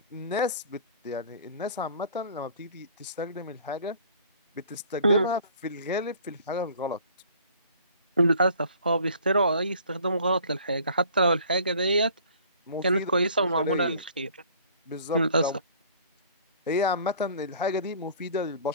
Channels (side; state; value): both; inverted; correlation -0.51